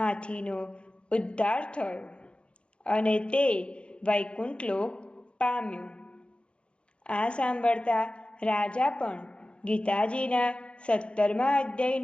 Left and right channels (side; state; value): right; late; 0.057 ms